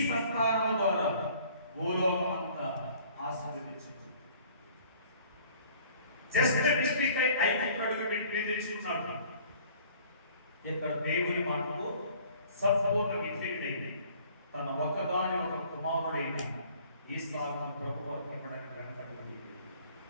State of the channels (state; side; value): inverted; both; correlation -0.54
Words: సంతానము ద్వారా భూలోకం అంతా ఆశీర్వదించబడును. జస్ట్ మిస్టేక్ అయి 5 అడుగు పెట్టి తెచ్చుకున్నాడు. ఇక్కడ దేవుని మాటకు సంపూర్ణ విధేయుడైంది. తన ఒకదాని ఒక కుమారుడైన ఈసాకును ప్రభువు అర్పణడానికి వెనకాడు.